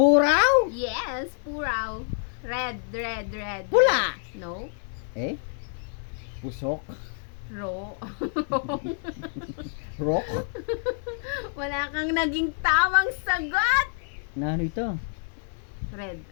Yes, puraw. Red. Pula. No. Pusok. Ro. Rock. Wala kang naging tamang sagot! Na ano ito? Red,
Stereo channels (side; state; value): right; silent; 60 dB below the other